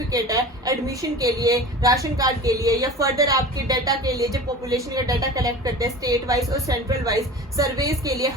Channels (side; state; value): both; normal; correlation 0.36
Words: है एडमिशन के लिए, राशन कार्ड के लिए या फर्दर आपके डाटा के लिए, जब पॉपुलेशन का डाटा कलेक्ट करते हैं स्टेट वाइज और सेंट्रल वाइज सर्वेज के लिए,